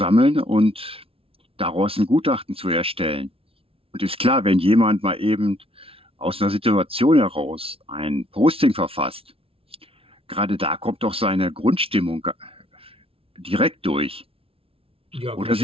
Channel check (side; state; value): left; late; 0.27 ms